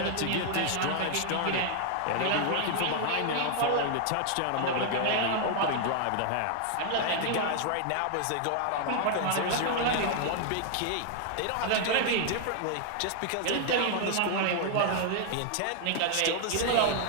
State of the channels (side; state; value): both; different; correlation 0.00